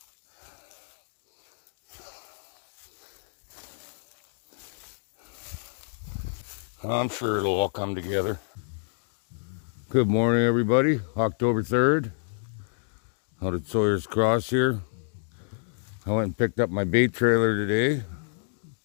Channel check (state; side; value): silent; right; digital silence